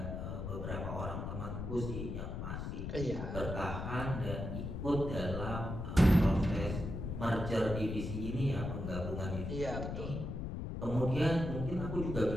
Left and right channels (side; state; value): left; noise; rumble, 4 dB below the sound